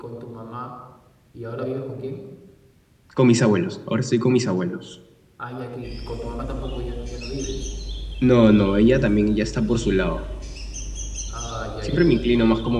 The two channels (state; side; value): identical; both; correlation 1.00